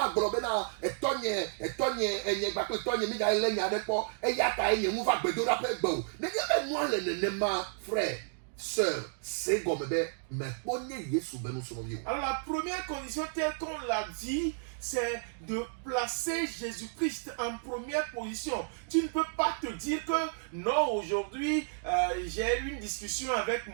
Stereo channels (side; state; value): left; silent; digital silence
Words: globé na, et tonye, et bako, tonye, mida, et l'enya de po, et y a taïe, nous va bédo la paix, bon. Ne y moi le nema, frère. Sœur, c'est comme mais alors la première condition telle qu'on l'a dit, c'est de placer Jésus-Christ en première position. Tu ne peux pas te dire que non, aujourd'hui j'ai eu une discussion avec